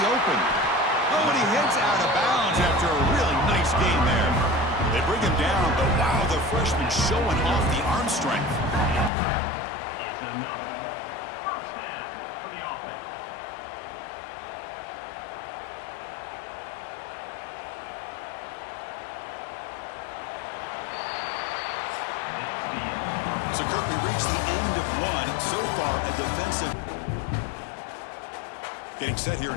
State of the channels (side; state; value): right; drops out; at 9.1 s